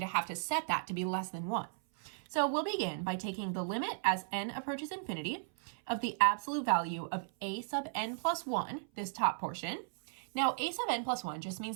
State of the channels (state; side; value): silent; left; 54 dB below the other